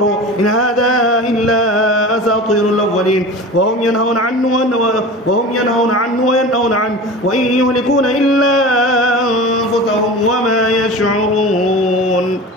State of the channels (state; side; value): normal; both; correlation 0.33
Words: إن هذا إلا أساطير الأولين وهم ينهون عنه وينهون عنه وإن يهلكون إلا أنفسهم وما يشعرون